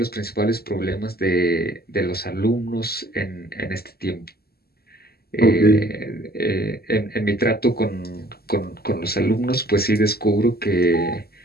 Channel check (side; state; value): right; late; 0.45 ms